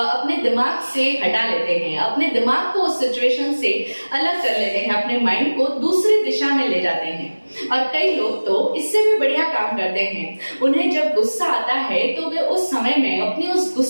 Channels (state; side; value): inverted; both; correlation -1.00